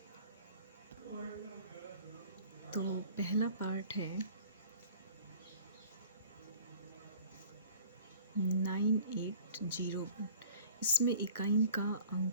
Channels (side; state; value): both; inverted; correlation -0.48